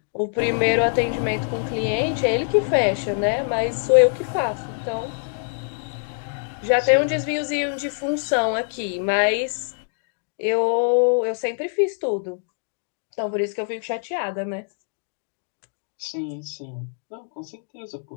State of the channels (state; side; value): silent; right; 63 dB below the other